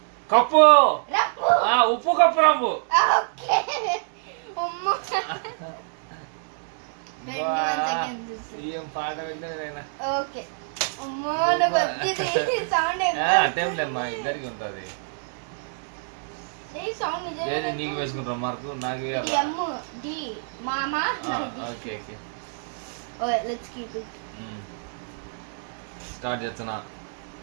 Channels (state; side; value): silent; left; digital silence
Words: కప్పు రంబు. ఉప్పు కప్పు రంబు. ఓకే అమ్మా ఏం పాట విన్నా. ఓకే అమ్మా నాకు వచ్చింది సౌండ్. టైంలేమ్మా ఇద్దరికి ఉంటుంది. సౌండ్ నిజంగా నీకు వేసుకుంటాం మార్కు నాకు డి మామా. Okay okay let's keep it. Start చేస్తున్నా